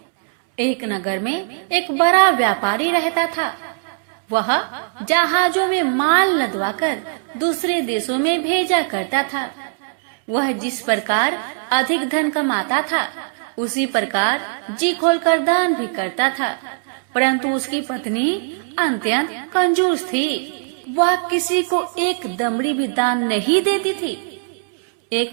एक नगर में एक बड़ा व्यापारी रहता था। वह जहाजों में माल लदवाकर दूसरे देशों में भेजा करता था। वह जिस प्रकार अधिक धन कमाता था, उसी प्रकार जी खोलकर दान भी करता था। परंतु उसकी पत्नी अत्यंत कंजूस थी। वह किसी को एक दमड़ी भी दान नहीं देती थी। एक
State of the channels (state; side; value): silent; left; 66 dB below the other